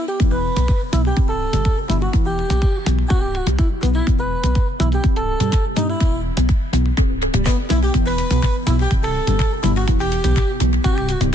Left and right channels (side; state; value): both; normal; correlation 0.78